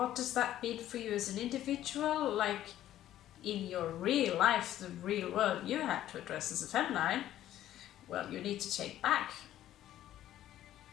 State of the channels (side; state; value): right; quieter; 12.7 dB